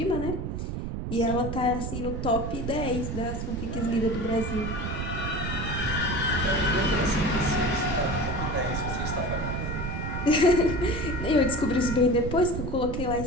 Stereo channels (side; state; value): right; noise; rumble, 4 dB below the sound